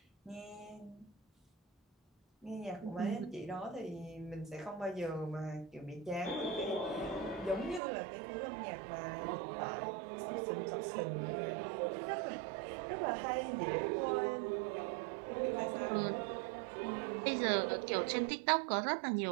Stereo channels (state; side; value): drops out; left; at 7.8 s